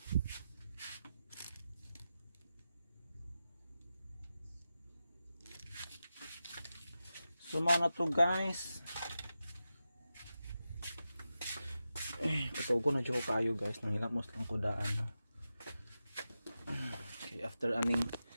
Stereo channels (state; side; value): inverted; both; correlation -0.91